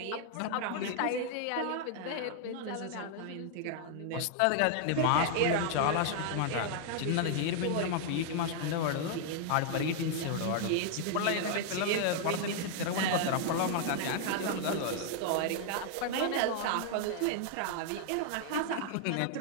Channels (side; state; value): both; different; correlation 0.00